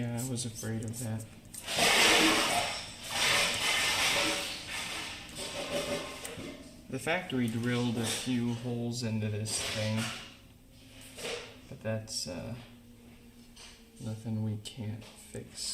I was afraid of that. The factory drilled a few holes into this thing, but that's nothing we can't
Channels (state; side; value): identical; both; correlation 1.00